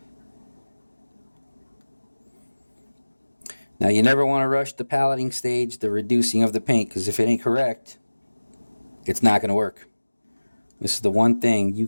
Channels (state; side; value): inverted; both; correlation -1.00